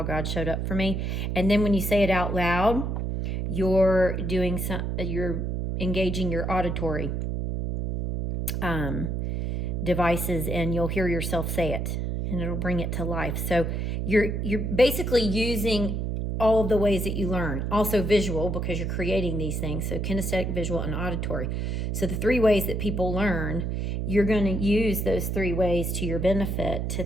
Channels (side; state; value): right; noise; hum, 1 dB below the sound